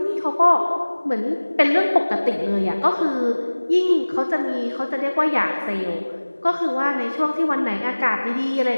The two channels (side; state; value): both; inverted; correlation -1.00